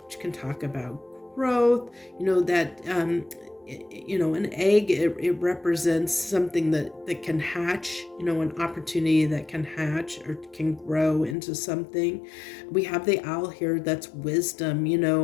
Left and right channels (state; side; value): drops out; right; at 11.4 s